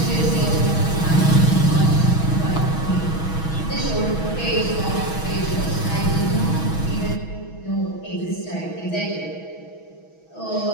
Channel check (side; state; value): right; late; 6.2 ms